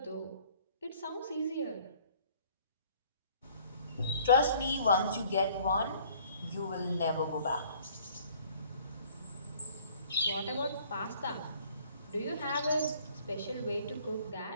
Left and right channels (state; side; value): inverted; both; correlation -0.56